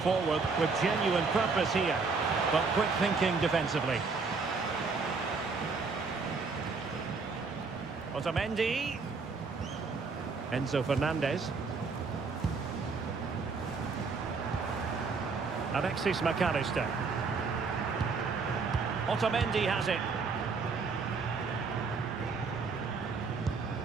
with genuine purpose here, but quick thinking defensively. Otamendi. Enzo Fernandez. Alexis McAllister. Otamendi has it.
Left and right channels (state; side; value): quieter; left; 4.6 dB